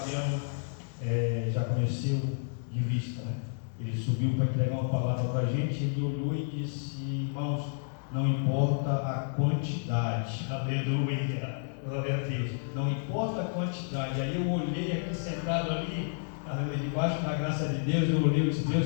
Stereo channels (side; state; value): right; silent; digital silence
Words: já conheceu de vista. Ele subiu para entregar uma palavra para a gente. Ele olhou e disse: irmãos, não importa a quantidade, aleluia, glória a Deus, não importa a quantidade. Aí eu olhei aqui sentado ali, debaixo da graça de Deus, eu olhei e disse: